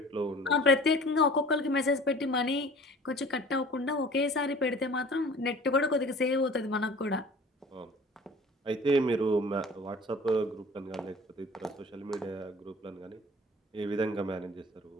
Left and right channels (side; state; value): both; normal; correlation 0.46